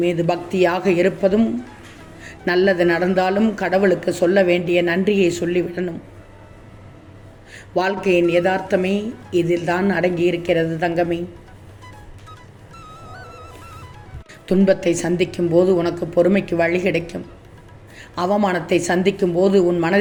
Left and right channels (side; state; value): both; identical; correlation 1.00